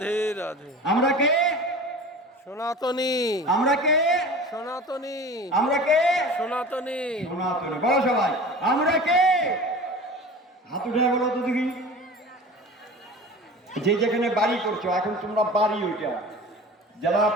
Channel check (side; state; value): both; normal; correlation 0.37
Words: রাধে আমরা কে? সনাতনী আমরা কে? সনাতনী আমরা কে? সনাতনী সনাতনী। বলো সবাই, আমরা কে? হাত উঠে বলো তো দেখি। যে যেখানে বাড়ি করছো, এখন তোমরা বাড়ি, ওইটা যারা